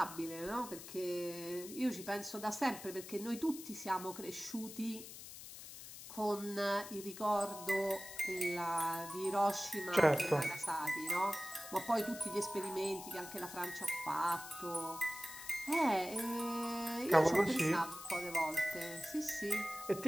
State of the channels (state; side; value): noise; left; hiss, 12 dB below the sound